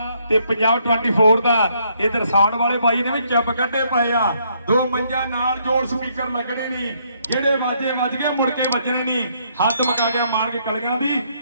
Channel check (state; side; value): inverted; both; correlation -0.71